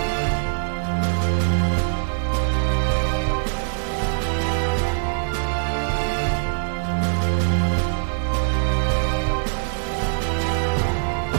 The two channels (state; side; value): silent; left; 64 dB below the other